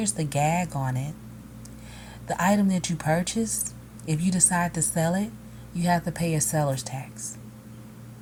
the gag on it. The item that you purchase, if you decide to sell it, you have to pay a seller's tax.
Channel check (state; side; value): identical; both; correlation 1.00